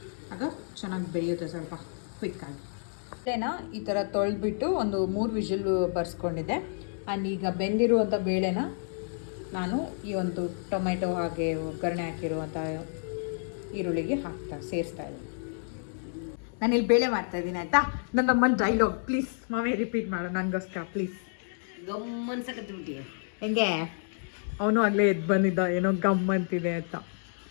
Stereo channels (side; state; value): right; silent; digital silence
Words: ಆಗ ಚೆನ್ನಾಗಿ ಬೇಯುತ್ತೆ ಸ್ವಲ್ಪ ಕ್ವಿಕ್ಕಾಗಿ. ಬೇಳೆನ ಈ ಥರ ತೊಳೆದ್ಬಿಟ್ಟು ಒಂದು 3 ವಿಷಲ್ ಬರ್ಸ್ಕೊಂಡಿದ್ದೆ. ಆ್ಯಂಡ್ ಈಗ ಬೆಂದಿರುವಂಥ ಬೇಳೆನ ನಾನು ಈ ಒಂದು ಟೊಮೆಟೊ ಹಾಗೆ ಒಗ್ಗರಣೆ ಹಾಕಿರುವಂಥ ಈರುಳ್ಳಿಗೆ ಸೇರಿಸ್ತಾ ಇದ್ದೀನಿ. ನಾನಿಲ್ಲಿ ಬೇಳೆ ಮಾಡ್ತಾಯಿದ್ದೀನಿ ಆಯಿತಾ. ನನ್ನ ಅಮ್ಮನ ಡೈಲಾಗ್ ಪ್ಲೀಸ್ ಮಾವೇ ರಿಪೀಟ್ ಮಾಡು ನನಗೋಸ್ಕರ ಪ್ಲೀಸ್. ಗಮ್ಮನ್ಸಕತ್ಬಿಟ್ಟಿಯ ಹೆಂಗೆ ಅವನು ಆಗಲೇ ಎದ್ದು ಬಂದಿದ್ದ ಏನೋ ಗಮ್ ಅಂತಿದೆ ಅಂತ.